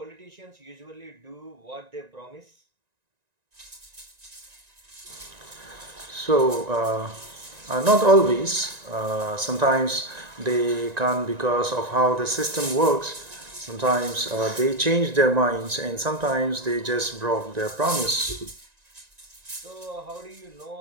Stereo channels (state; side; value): late; left; 1.9 ms